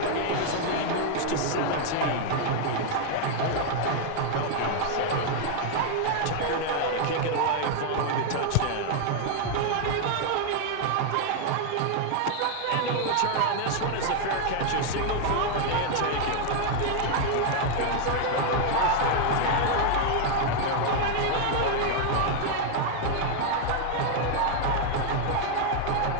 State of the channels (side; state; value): both; different; correlation 0.00